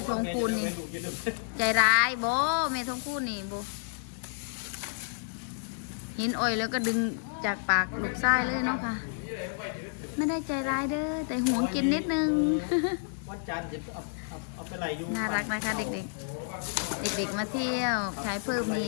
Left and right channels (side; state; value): right; silent; 58 dB below the other